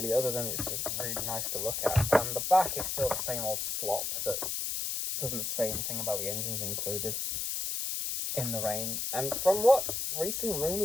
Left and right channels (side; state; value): left; noise; hiss, 1 dB below the sound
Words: other than it's just really nice to look at. And the back is still the same old slop that doesn't say anything about the engines included in the range. And from what recent